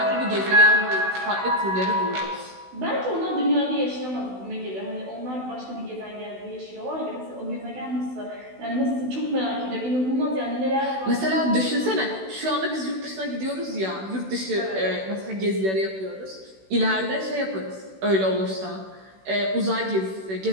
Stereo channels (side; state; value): left; late; 16 ms